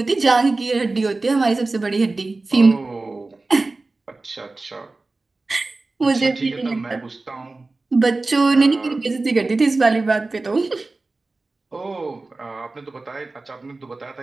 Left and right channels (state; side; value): quieter; left; 3.4 dB